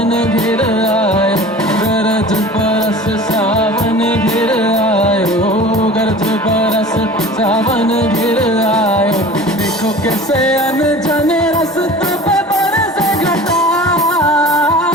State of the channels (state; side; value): normal; both; correlation 0.40